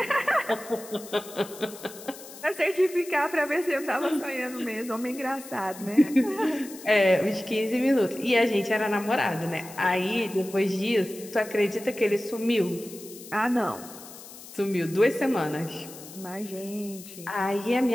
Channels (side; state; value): left; noise; hiss, 16 dB below the sound